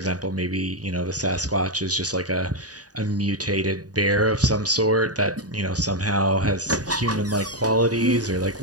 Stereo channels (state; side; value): late; left; 0.68 ms